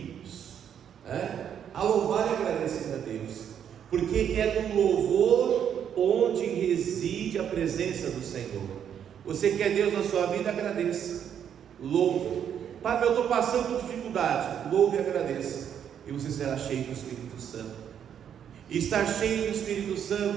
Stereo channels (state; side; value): quieter; left; 8.8 dB